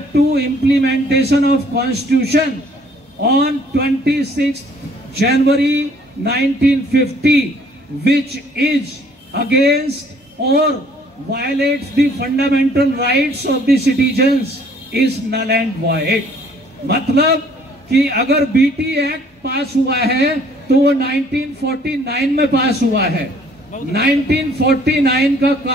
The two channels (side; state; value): both; normal; correlation 0.59